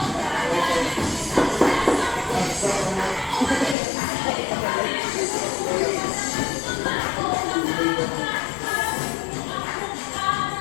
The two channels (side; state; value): right; drops out; at 3.8 s